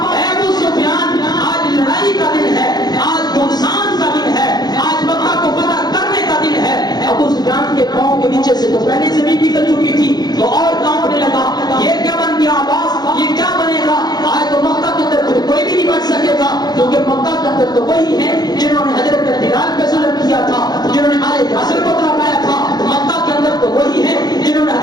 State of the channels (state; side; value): late; right; 0.19 ms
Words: اے ابو سفیان آج لڑائی کا دن ہے, آج گھمسان کا دن ہے, آج مکہ کو فتح کرنے کا دن ہے. ابو سفیان قیامت تو وہی ہیں جنہوں نے حضرت بلال پہ ظلم کیا تھا، جنہوں نے آل یاسر کو تڑپایا تھا۔ مکہ کے اندر تو وہی ہیں جنہوں نے